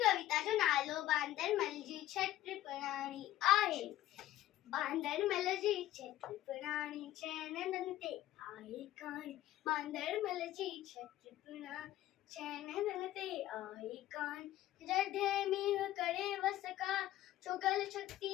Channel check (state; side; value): quieter; right; 14.2 dB